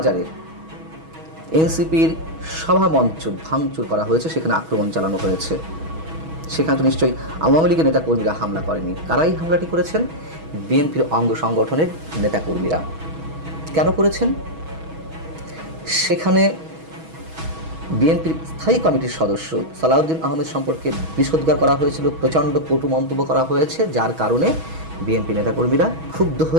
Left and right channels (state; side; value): late; left; 6.2 ms